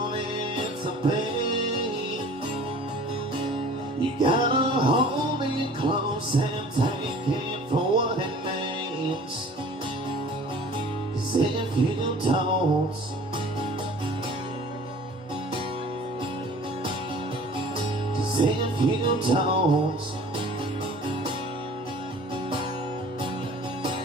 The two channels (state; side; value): normal; both; correlation 0.47